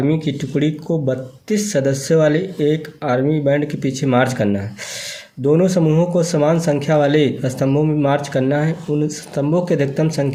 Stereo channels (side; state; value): both; identical; correlation 1.00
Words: की टुकड़ी को 32 सदस्यों वाले एक आर्मी बैंड के पीछे मार्च करना है। दोनों समूहों को समान संख्या वाले स्तंभों में मार्च करना है। उन स्तंभों की अधिकतम